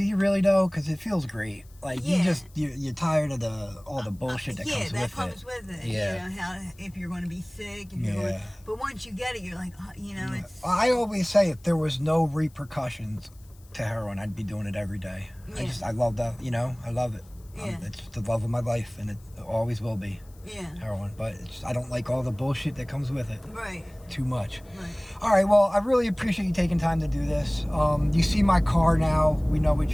you really though? Because it feels great. Like, you're tired of all the bullshit that comes with it. Yeah, that comes with it. Yeah. How if you're going to be sick. But once you get it, you're like, it's... I always say if there was no repercussions to heroin, I'd be doing it every day. I love that, I love it. Yeah. It's the love of my life, and it always will be. Yeah. Heroin, but I don't like all the bullshit that comes with it. Right. Too much. Right. All right, well, I really appreciate you taking time to do this. You see my car now. We know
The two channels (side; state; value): left; noise; hiss, 28 dB below the sound